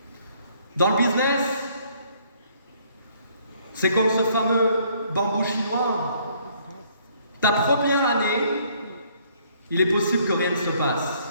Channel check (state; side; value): inverted; both; correlation -0.64